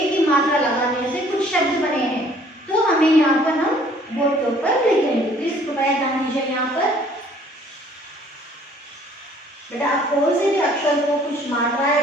ही मात्रा लगाने से कुछ शब्द बने हैं, तो हमें यहाँ पर हम बोर्ड के ऊपर लिखेंगे। तो इसको ध्यान दीजिए। यहाँ पर बेटा आप कौन से भी अक्षर को कुछ मात्राएं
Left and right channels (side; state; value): both; normal; correlation 0.58